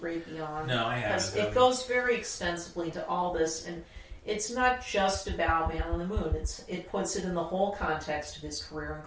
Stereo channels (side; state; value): both; identical; correlation 1.00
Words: Beyond? No, I haven't. Because it goes very extensively to all this, and it's not just about Man on the Moon. It puts it in the whole context of his career,